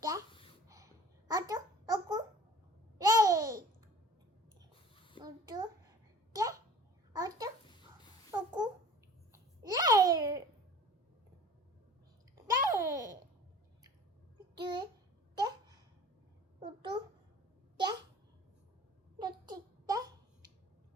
어두, 어구, 네. 어두, 네. 어두, 어구, 네. 네. 둘, 네. 어두, 네. 어두, 네.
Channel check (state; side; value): normal; both; correlation 0.45